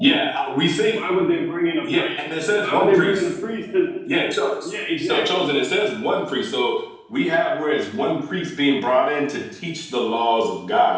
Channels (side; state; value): both; identical; correlation 1.00